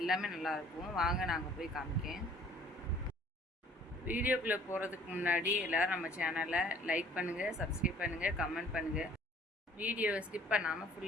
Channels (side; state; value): both; normal; correlation 0.55